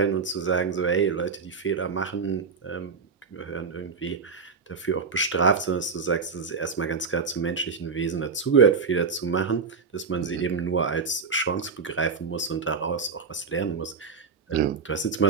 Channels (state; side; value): quieter; left; 5.2 dB